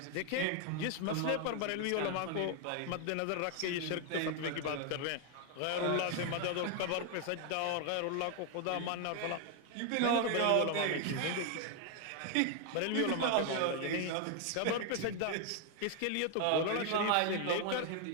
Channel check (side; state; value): both; different; correlation 0.00